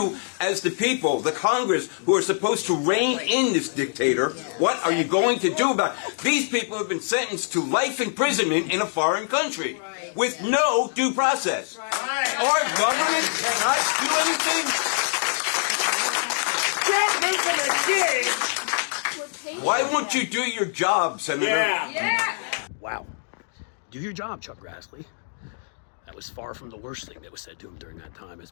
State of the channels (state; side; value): silent; right; digital silence